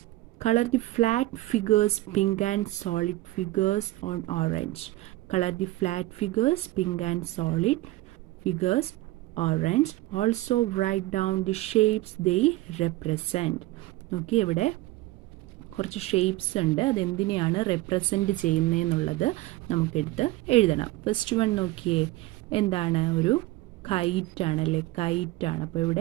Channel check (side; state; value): left; quieter; 18.3 dB